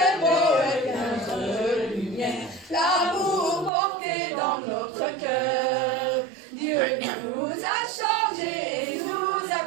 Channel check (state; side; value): drops out; left; at 3.7 s